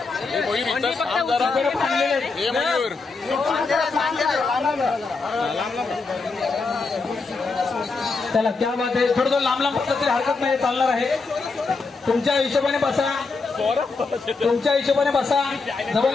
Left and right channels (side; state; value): right; quieter; 4.2 dB